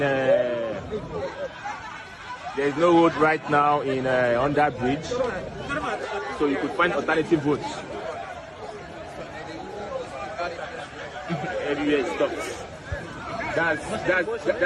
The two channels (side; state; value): both; identical; correlation 1.00